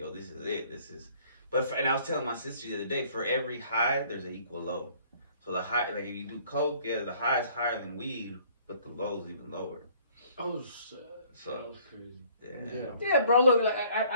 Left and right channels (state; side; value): inverted; both; correlation -0.57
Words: this is it. And I was telling my sister the other day, for every high, there's an equal low. So the high, like if you do coke, yeah, the high is higher than weed, but the low is even lower. Oh, shit. So that was crazy. Yeah, bro. Look, like,